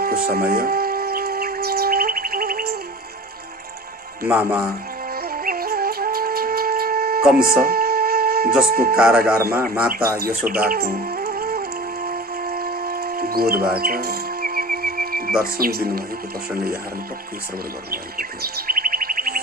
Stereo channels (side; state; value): both; normal; correlation 0.37